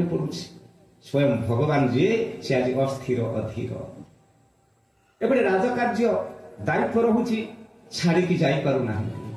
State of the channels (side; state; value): both; identical; correlation 1.00